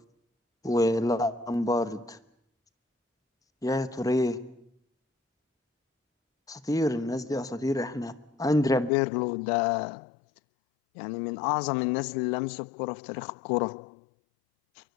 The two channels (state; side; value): drops out; right; at 8.9 s